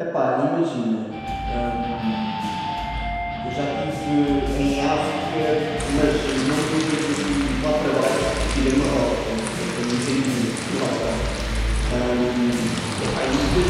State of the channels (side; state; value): both; identical; correlation 1.00